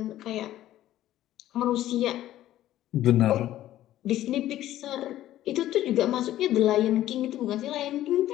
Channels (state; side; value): quieter; right; 13.6 dB